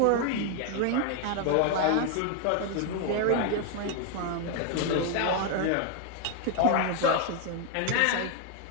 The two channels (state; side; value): different; both; correlation 0.00